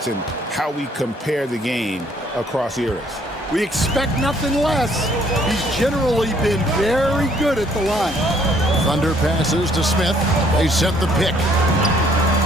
and how we compare the game across eras. We expect nothing less. He's generally been very good at the line. Thunder passes to Smith. They set the pick.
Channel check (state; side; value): normal; both; correlation 0.64